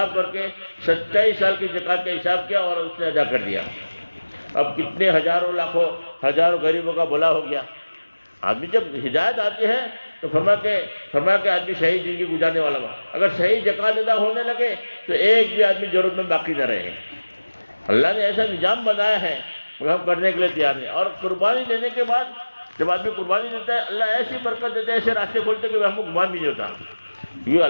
کر کے 27 سال کی زکوٰۃ کا حساب کیا اور اس نے ادا کر دیا۔ اب کتنے ہزاروں لاکھوں ہزاروں غریبوں کا بھلا ہو گیا۔ آدمی جب ہدایت آتی ہے تو فرمایا کہ آدمی صحیح زندگی گزارنے والا ہوا، اگر صحیح زکوٰۃ ادا ہونے لگے تو ایک بھی آدمی ضرورت میں باقی نہ رہے۔ اللہ نے ایسا نظام بنایا ہے مگر ہم کرنے کے لیے تیار نہیں۔ اور قربانی دینے کے بعد جب آدمی قربانی دیتا ہے اللہ ایسی برکت دیتا ہے، ایسے راستے کھولتے کہ ہم کو گمان بھی نہیں ہوتا، کیونکہ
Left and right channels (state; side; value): inverted; both; correlation -1.00